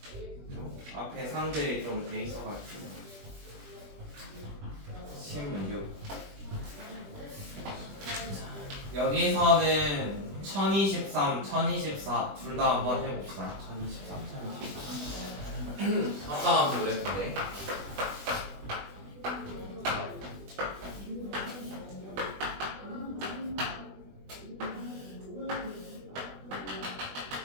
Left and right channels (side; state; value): left; late; 20 ms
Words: 앞에 상들이 좀 돼 있어가지고 16. 여기서는 1023, 1024 둘 다 한번 해봅시다. 1023, 1024 합성함수 그랬는데